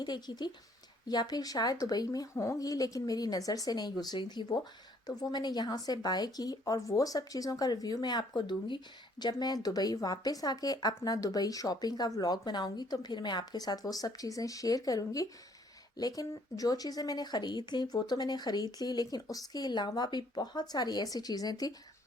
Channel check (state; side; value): normal; both; correlation 0.63